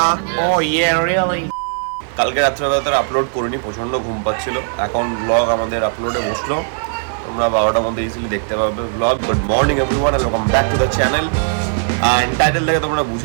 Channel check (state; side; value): silent; left; 68 dB below the other